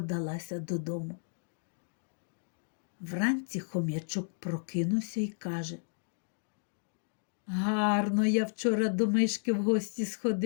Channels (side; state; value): right; silent; digital silence